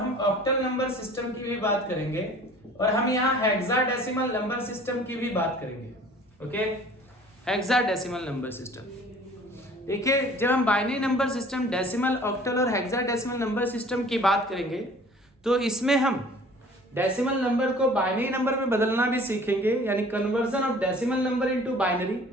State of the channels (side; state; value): both; normal; correlation 0.49